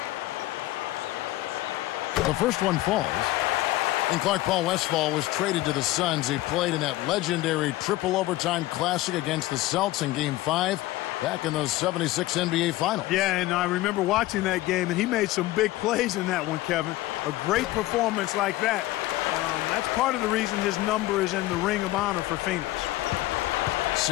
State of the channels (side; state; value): right; quieter; 17.3 dB